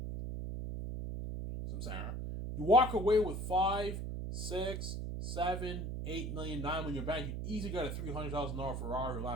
Some Sarah. You walk away with 5, 6, 7, 8 million, 9 million in your bank, you easily got a $300,000 Ferrari or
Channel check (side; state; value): right; noise; hum, 4 dB below the sound